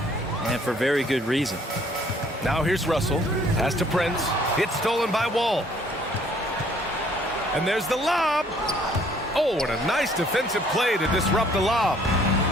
and for very good reason. Now here's Russell. Pass to Prince. It's stolen by Wall. And there's the lob. Oh, what a nice defensive play to disrupt the lob.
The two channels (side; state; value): both; normal; correlation 0.60